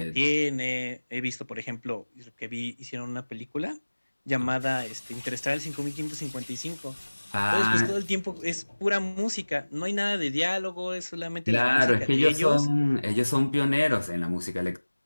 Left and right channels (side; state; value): both; inverted; correlation -1.00